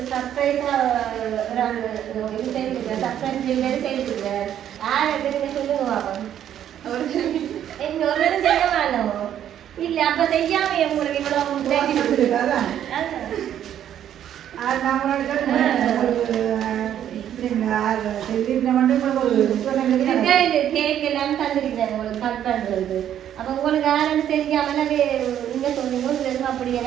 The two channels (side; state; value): left; quieter; 10.4 dB